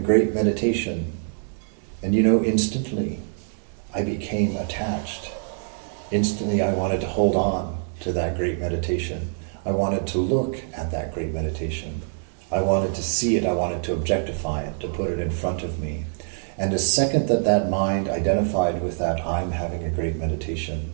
meditation. And instantly I became attached. Instantly I wanted to hold on to that great meditation. I wanted to look at that great meditation. I wanted to see it. I wanted to objectify it, to put it in front of me. And the second that mind identified with that I'm having a great meditation,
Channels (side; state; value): left; silent; digital silence